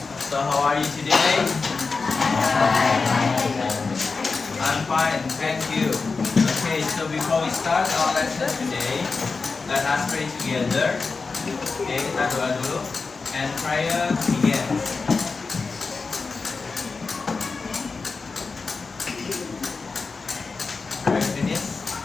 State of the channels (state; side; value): quieter; right; 4.4 dB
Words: So, how are you today? I'm fine, thank you. Okay, so before we start our lesson today, let us pray together. Okay, kita doa dulu. And prayer begins.